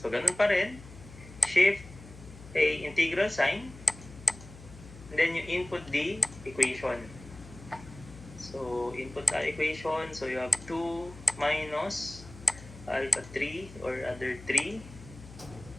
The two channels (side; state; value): left; noise; hum, 17 dB below the sound